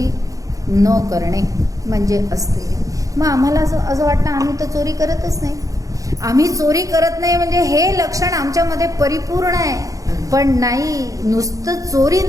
न करणे म्हणजे अस्तेय. मग आम्हाला असं वाटतं आम्ही तर चोरी करतच नाही. आम्ही चोरी करत नाही म्हणजे हे लक्षण आमच्यामध्ये परिपूर्ण आहे, पण नाही, नुसतं चोरी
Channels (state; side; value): late; left; 0.16 ms